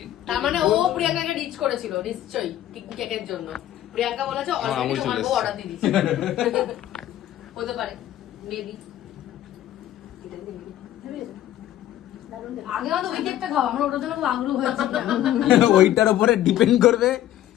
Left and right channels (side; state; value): right; quieter; 12.7 dB